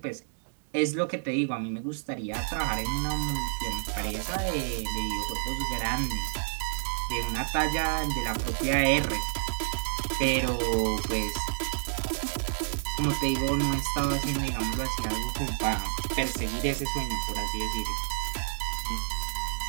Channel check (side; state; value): left; silent; digital silence